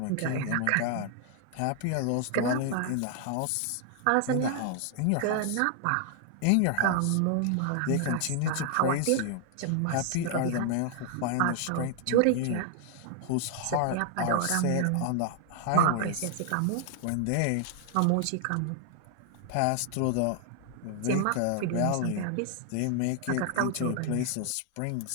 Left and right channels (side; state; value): both; different; correlation 0.00